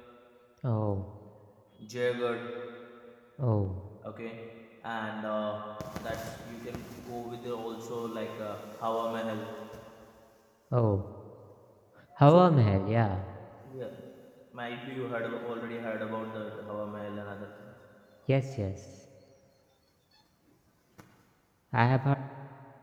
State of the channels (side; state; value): both; identical; correlation 1.00